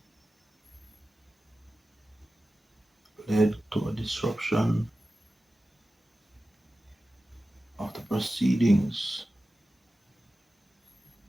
Led to a disruption of the proceedings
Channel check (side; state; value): both; normal; correlation 0.95